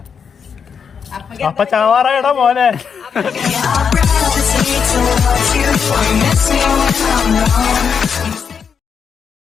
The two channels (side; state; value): right; quieter; 6.6 dB